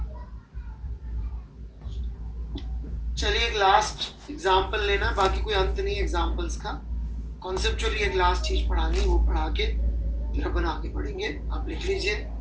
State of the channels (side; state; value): both; identical; correlation 1.00